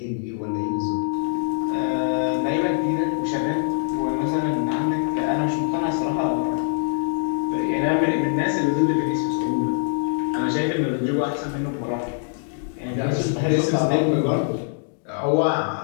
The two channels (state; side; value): silent; right; digital silence